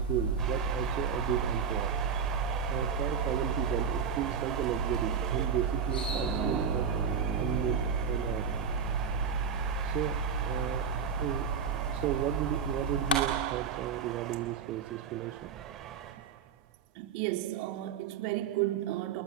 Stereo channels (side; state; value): left; quieter; 6.6 dB